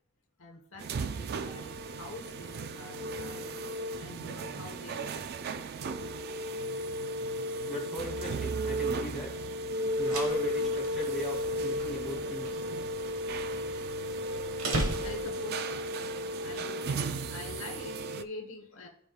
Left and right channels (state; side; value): normal; both; correlation 0.19